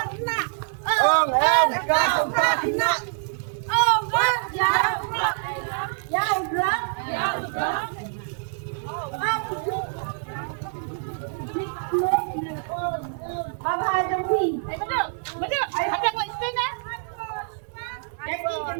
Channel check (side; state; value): left; silent; digital silence